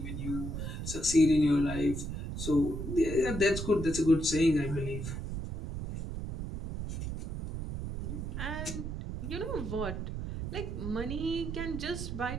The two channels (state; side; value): noise; right; rumble, 5 dB below the sound